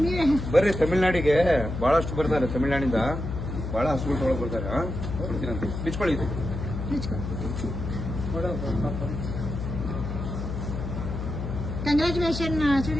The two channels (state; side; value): noise; left; hum, 5 dB below the sound